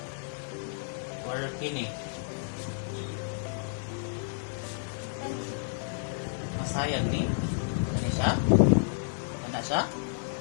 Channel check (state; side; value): silent; right; digital silence